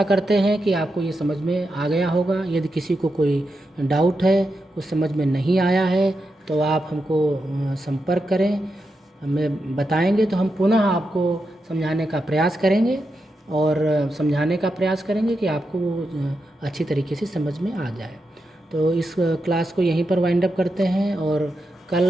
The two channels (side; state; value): both; normal; correlation 0.87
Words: करते हैं कि आपको ये समझ में आ गया होगा। यदि किसी को कोई डाउट है, कुछ समझ में नहीं आया है, तो आप हमको संपर्क करें, हमें बताएंगे तो हम पुनः आपको समझाने का प्रयास करेंगे और समझाने का प्रयास करेंगे कि आपको वो अच्छी तरीके से समझ में आ जाए। तो इस क्लास को यहीं पर वाइंड अप करते हैं और